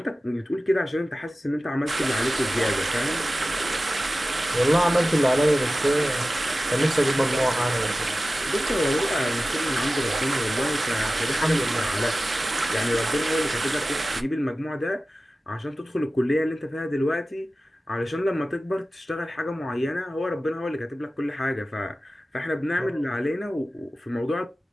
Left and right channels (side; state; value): both; normal; correlation 0.95